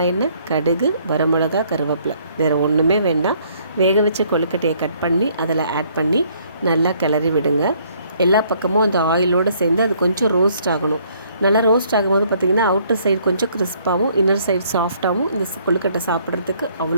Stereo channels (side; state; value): both; inverted; correlation -0.64